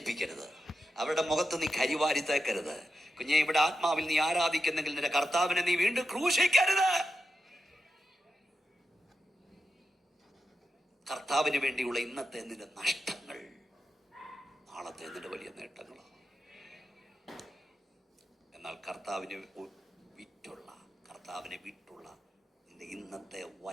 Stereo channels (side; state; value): both; normal; correlation 0.89